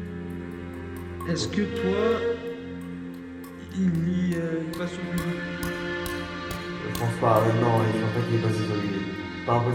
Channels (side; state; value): both; identical; correlation 1.00